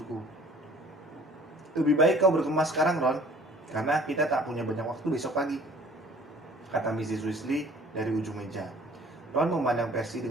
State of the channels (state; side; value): normal; both; correlation 0.52